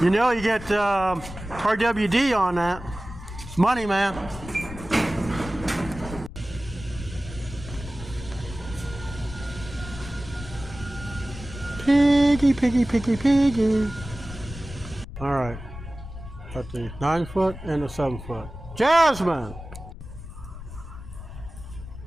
You know, you get RWD on that. It's money, man. Piggy, piggy, piggy, piggy. All right. Got the 9-foot and the 7-foot. Jasmine!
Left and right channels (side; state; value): left; noise; rumble, 13 dB below the sound